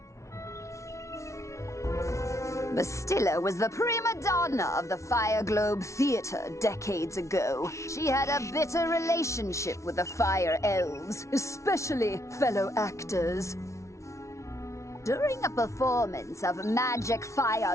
Bastilla was the prima donna of the Fire Globe Theater decades ago. She had a bitter relationship with the Fire Elves, especially fellow actors. During a performance of magic fire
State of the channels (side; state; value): right; late; 0.14 ms